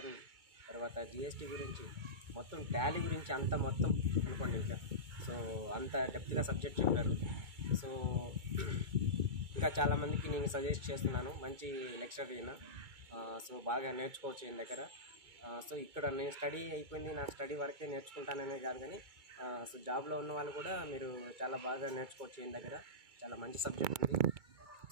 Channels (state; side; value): late; left; 2.3 ms